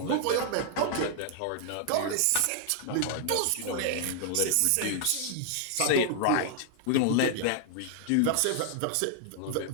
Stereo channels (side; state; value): both; different; correlation 0.00